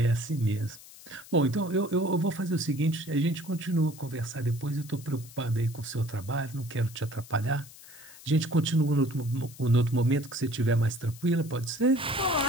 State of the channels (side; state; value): left; noise; hiss, 19 dB below the sound